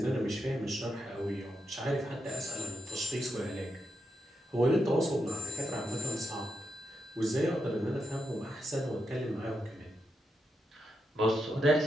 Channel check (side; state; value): both; normal; correlation 0.84